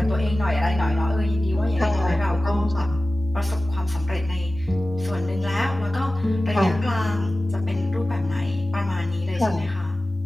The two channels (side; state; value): both; normal; correlation 0.96